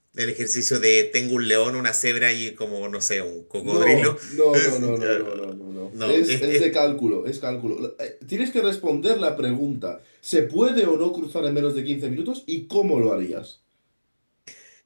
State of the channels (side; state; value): both; inverted; correlation -1.00